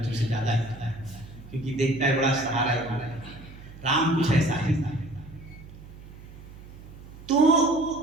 से ज्यादा, क्योंकि देखता है बड़ा सहारा है। राम कुछ ऐसा ही था। तो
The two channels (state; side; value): noise; right; hum, 17 dB below the sound